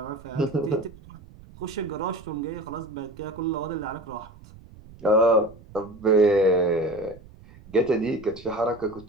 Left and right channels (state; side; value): noise; right; rumble, 21 dB below the sound